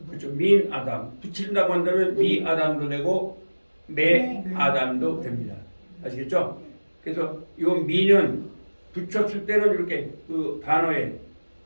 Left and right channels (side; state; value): both; inverted; correlation -1.00